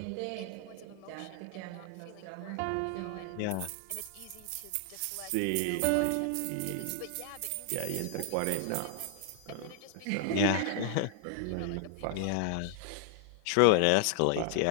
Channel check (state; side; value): different; both; correlation 0.00